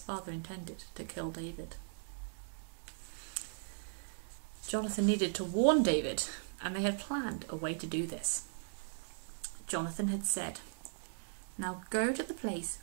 intended to kill David. Jonathan needed to warn David, and they had planned a way to do this. Jonathan had said, "Now go to the place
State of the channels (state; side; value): silent; left; digital silence